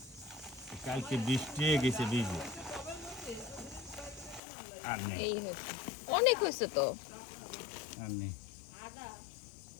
কালকে বৃষ্টি গেছে ভিজে আর নেই, এই হচ্ছে, অনেক হয়েছে তো। আর নেই।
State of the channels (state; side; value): drops out; right; at 4.4 s